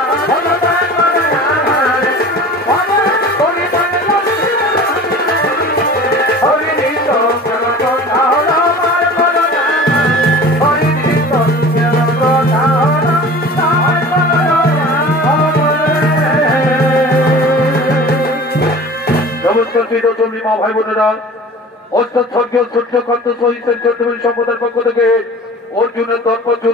মা ভাই বোনেরা, স্বর্গীয় সূর্যকান্ত সহিতের চৌধুরী সম্প্রদায়ের পক্ষ থেকে অর্জুনের দর্প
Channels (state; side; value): normal; both; correlation 0.40